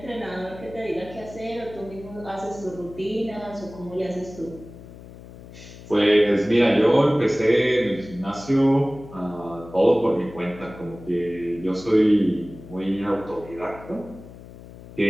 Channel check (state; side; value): noise; left; hum, 17 dB below the sound